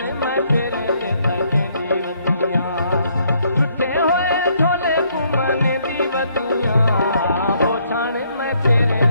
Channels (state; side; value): inverted; both; correlation -0.69